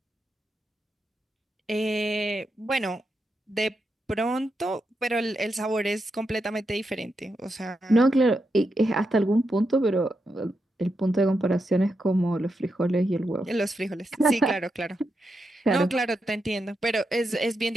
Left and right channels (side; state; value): both; normal; correlation 0.85